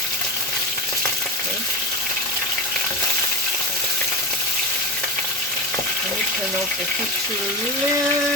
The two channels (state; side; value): normal; both; correlation 0.22